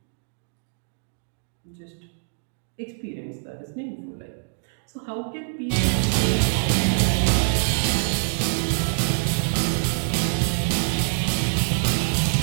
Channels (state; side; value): silent; left; digital silence